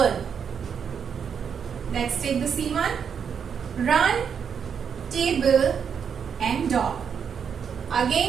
Let's take the C one. Run, table, and dog.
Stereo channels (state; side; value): quieter; left; 7.1 dB